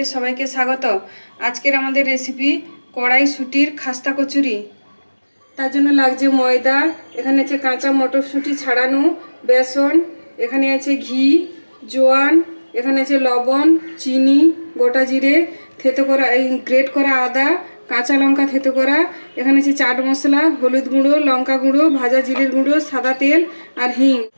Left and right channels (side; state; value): both; inverted; correlation -1.00